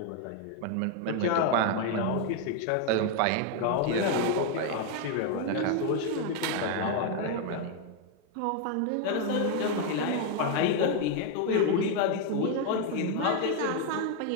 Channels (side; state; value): both; different; correlation 0.01